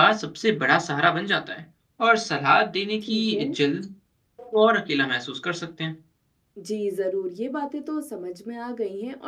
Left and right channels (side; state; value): both; identical; correlation 1.00